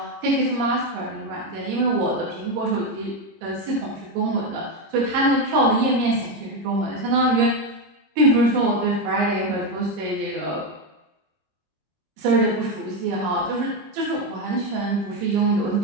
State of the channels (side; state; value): left; late; 25 ms